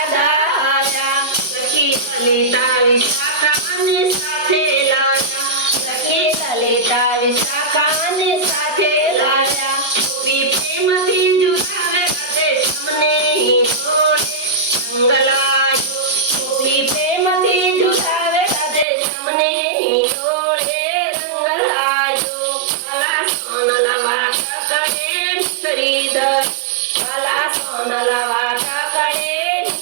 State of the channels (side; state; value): left; drops out; at 18.9 s